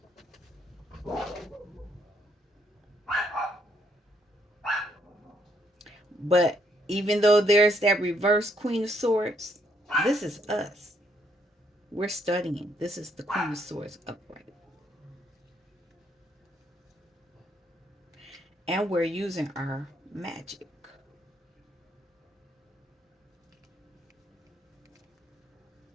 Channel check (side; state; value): both; normal; correlation 0.71